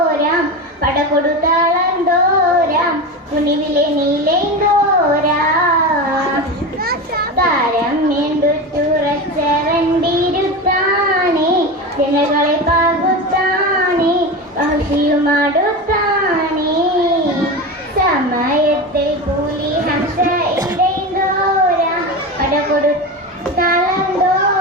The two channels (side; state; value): both; normal; correlation 0.23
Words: പടകൊടുത്താളന്തോരാം കുനിവിലെ നീലൈന്തോരാം താരം എന്തുറച്ചവണ്ടിരുത്താണി ജനകളെ പാകുത്താണി വഹ്ഷിയുമാടുത്താണി സമയത്തിൽ കൂലി ഹംസ ഇടൈന്തോരാം